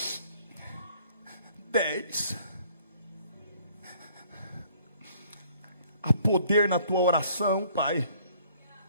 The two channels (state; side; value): inverted; both; correlation -0.59